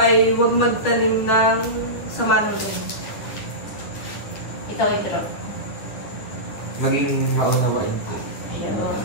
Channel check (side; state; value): right; late; 9.7 ms